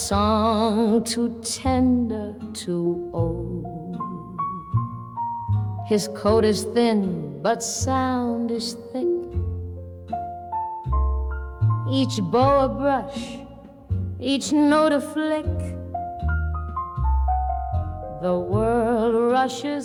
too tender, too old. His coat is thin, but sound is thick. Each bow a brush, each note a flick. The world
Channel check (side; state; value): both; identical; correlation 1.00